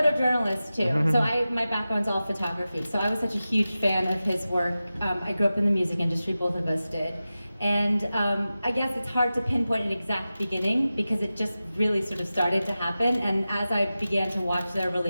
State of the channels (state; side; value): inverted; both; correlation -0.95